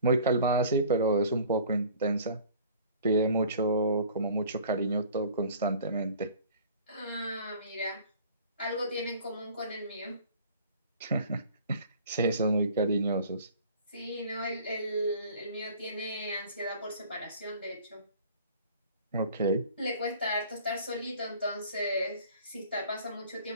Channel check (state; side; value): inverted; both; correlation -0.48